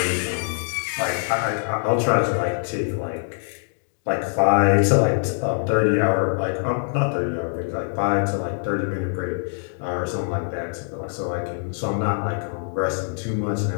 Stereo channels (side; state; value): right; silent; digital silence